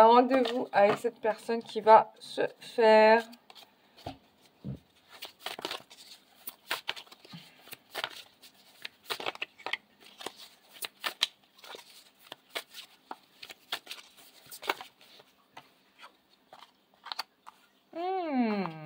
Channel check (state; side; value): identical; both; correlation 1.00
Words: un rendez-vous avec cette personne qui va se faire.